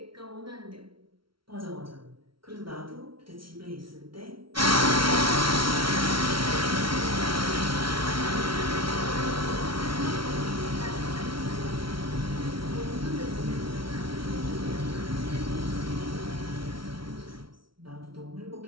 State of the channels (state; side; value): late; left; 0.74 ms